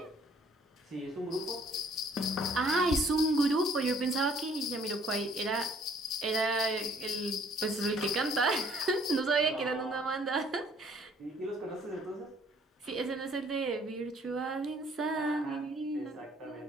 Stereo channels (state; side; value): normal; both; correlation 0.60